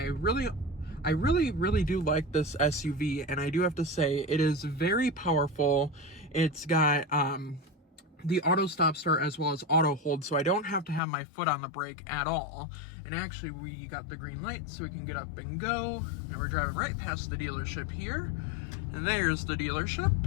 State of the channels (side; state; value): right; drops out; at 11.0 s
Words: really do like this SUV, and I do have to say it is very powerful. It's got the auto stop start as well as auto hold, so I don't have to have my foot on the brake at all. And actually, we got the green light so we can get up and go, and we're driving right past the dealership here, and there's the dealership.